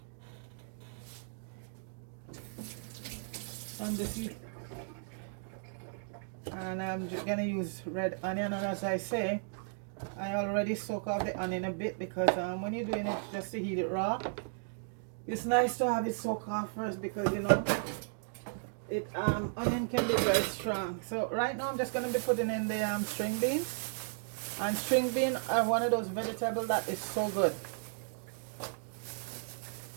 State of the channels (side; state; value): left; silent; digital silence